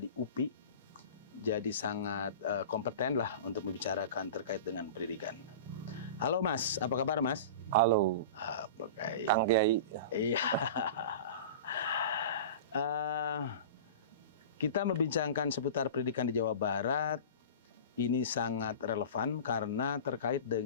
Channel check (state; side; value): inverted; both; correlation -0.34